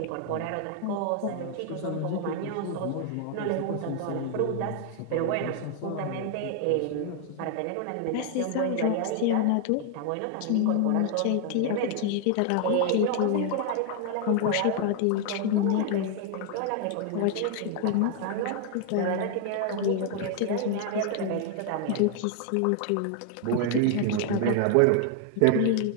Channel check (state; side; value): different; both; correlation 0.00